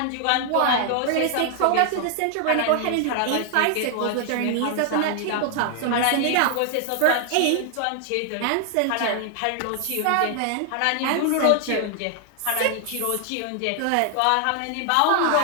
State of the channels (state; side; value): different; both; correlation 0.00